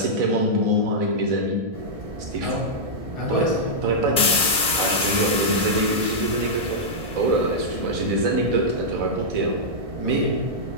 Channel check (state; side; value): late; left; 1.6 ms